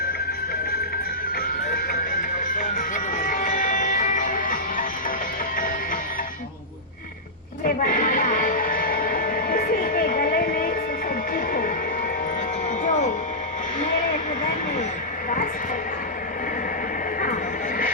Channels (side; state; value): both; normal; correlation -0.12